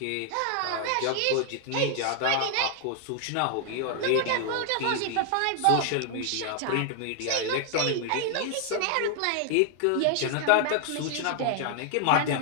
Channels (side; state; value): both; different; correlation 0.00